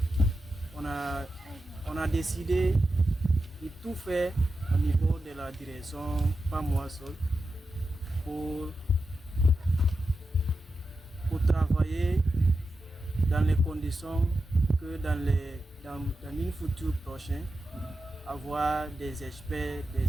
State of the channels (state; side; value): normal; both; correlation 0.90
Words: On a décidé de tout faire au niveau de la direction, pas moi seul, pour travailler dans les conditions que dans une future prochaine, avoir des experts, des